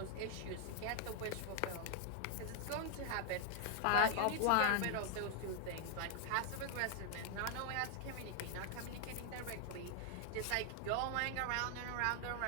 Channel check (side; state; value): both; different; correlation 0.00